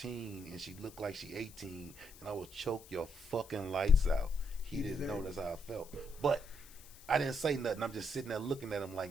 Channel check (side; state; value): left; noise; hiss, 20 dB below the sound